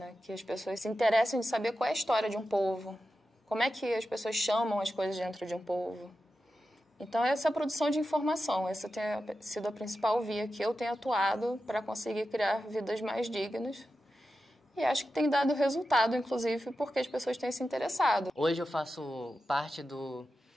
Que as pessoas se interessem de saber qual é a história de um povo, como é que as pessoas chamam as coisas dentro de um povo. Então, essa é a produção de informação, essa tem sido a principal via que eu tenho atuado para conseguir criar vidas mais dignas E acho que tem dado resultado, inclusive, porque as pessoas têm se interessado. Hoje eu faço parte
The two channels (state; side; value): normal; both; correlation 0.91